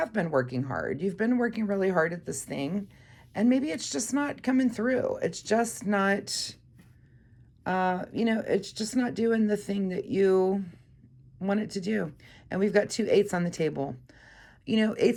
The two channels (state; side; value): identical; both; correlation 1.00